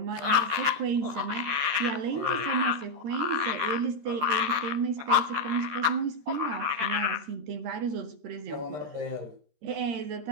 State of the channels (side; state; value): left; late; 13 ms